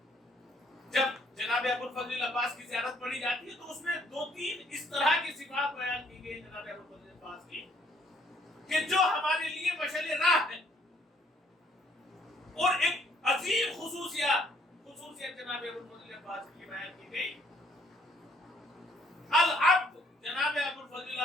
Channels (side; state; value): both; normal; correlation 0.65